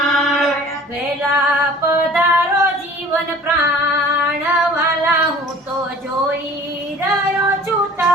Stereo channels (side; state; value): both; normal; correlation 0.47